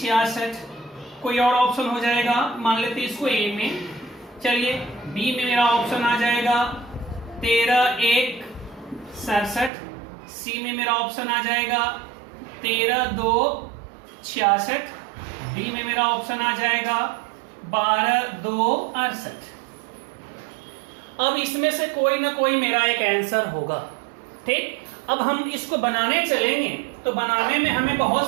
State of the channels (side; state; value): left; drops out; at 9.7 s